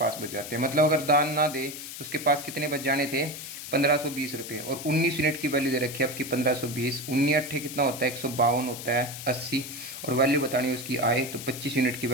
बच जाते हैं। मतलब अगर दान ना दे तो उसके पास कितने बच जाने थे 1520 रुपये, और 19 यूनिट की वैल्यू दे रखी है आपकी 1520। 19 अट्ठे कितना होता है 152 होता है 80, और वैल्यू बतानी है उसकी आय। तो 25 यूनिट की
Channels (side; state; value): left; noise; hiss, 10 dB below the sound